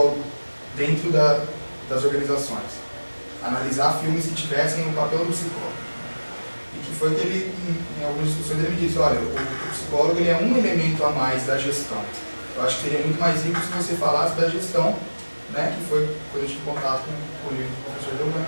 dentro das organizações. Analisar filmes que tivessem o papel do psicólogo. e que foi que ele, em algumas discussões, ele me disse, olha, o psicólogo ele é um elemento a mais da gestão. Eu acho que seria muito mais rico se você falasse da gestão, né, que foi quando eu tive contato com o livro do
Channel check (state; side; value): inverted; both; correlation -1.00